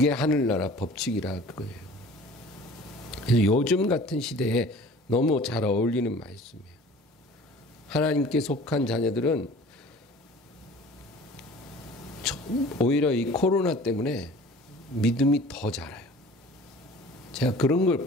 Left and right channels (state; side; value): normal; both; correlation 0.46